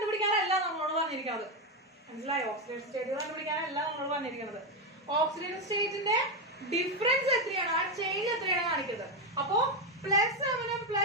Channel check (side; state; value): both; normal; correlation 0.08